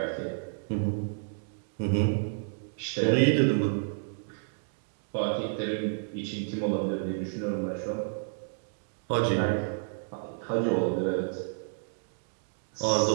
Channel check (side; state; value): left; silent; digital silence